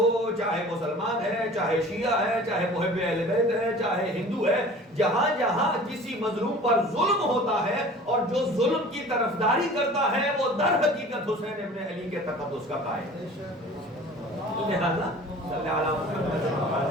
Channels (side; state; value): both; normal; correlation 0.44